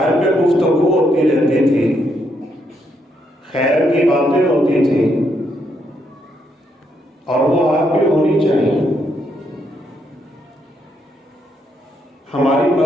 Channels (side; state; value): both; normal; correlation 0.77